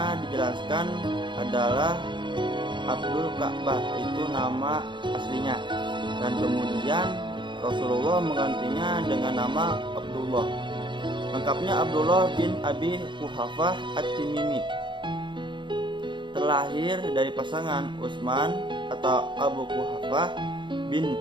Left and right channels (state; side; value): late; left; 0.23 ms